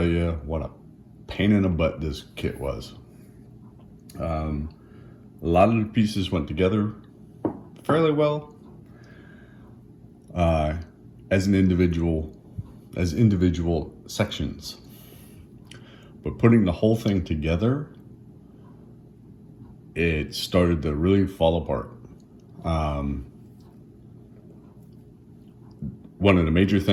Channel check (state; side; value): identical; both; correlation 1.00